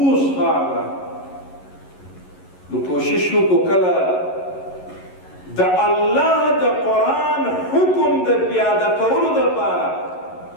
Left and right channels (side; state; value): right; late; 11 ms